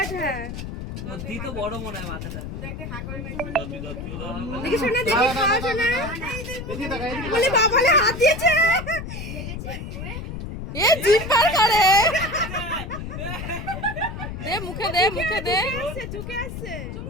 হ্যাঁ বুদ্ধি তো বড় মনে হয় মাথাটা দেখি শোনা দেখি খাওয়া শোনা বলে বাবালে হাত দিয়েছে এ জিভ বার করে দে মুখে দে আসছে ঝুঁকে আসছে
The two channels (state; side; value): noise; left; rumble, 8 dB below the sound